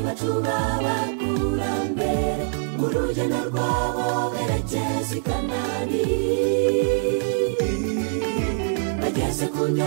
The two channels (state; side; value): silent; left; digital silence